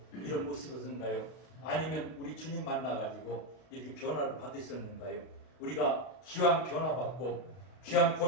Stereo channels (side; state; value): right; late; 32 ms